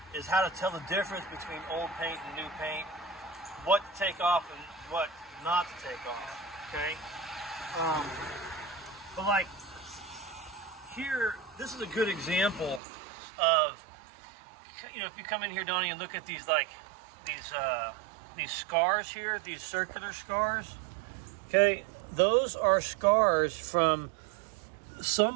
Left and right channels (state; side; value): drops out; left; at 12.8 s